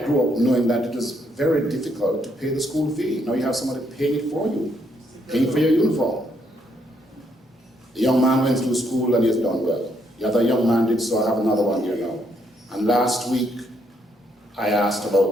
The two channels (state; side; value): normal; both; correlation 0.74